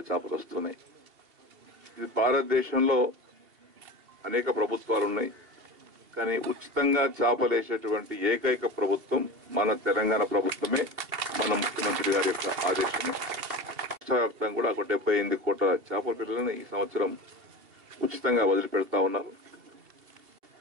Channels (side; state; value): left; late; 2.8 ms